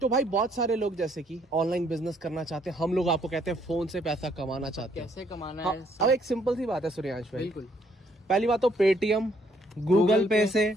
तो भाई बहुत सारे लोग जैसे कि ऑनलाइन बिजनेस करना चाहते हैं, हम लोग आपको कहते हैं फोन से पैसा कमाना चाहते हैं। कैसे कमाना है? अब एक सिंपल सी बात है सूर्यांश भाई, बिल्कुल। पहली बात तो पेटीएम गूगल पे से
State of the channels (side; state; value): both; normal; correlation 0.68